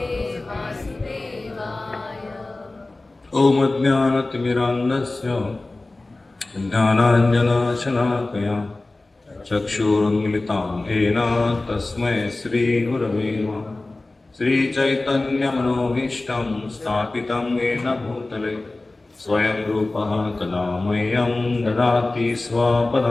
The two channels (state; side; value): quieter; right; 3.0 dB